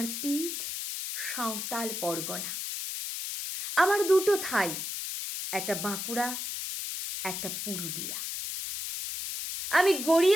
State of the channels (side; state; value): left; noise; hiss, 5 dB below the sound